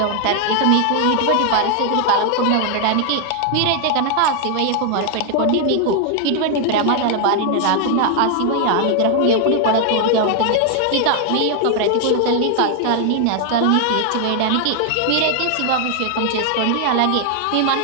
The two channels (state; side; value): different; both; correlation 0.00